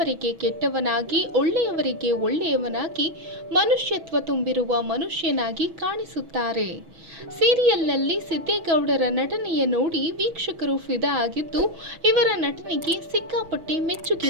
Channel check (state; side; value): late; left; 6.2 ms